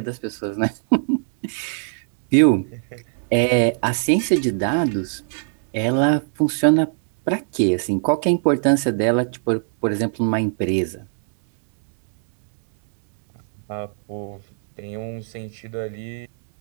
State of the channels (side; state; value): left; silent; digital silence